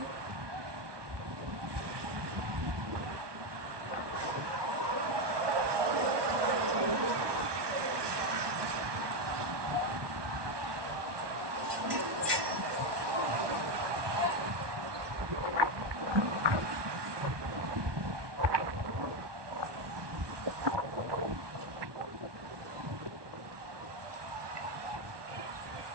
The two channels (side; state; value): left; late; 1.2 ms